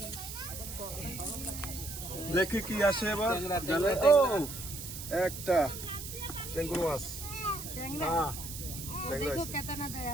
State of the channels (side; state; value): right; noise; hiss, 9 dB below the sound